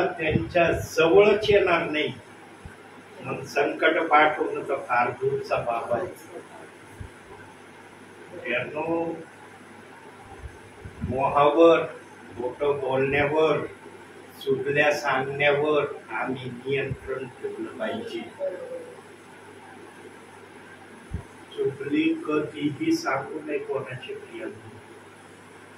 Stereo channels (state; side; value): identical; both; correlation 1.00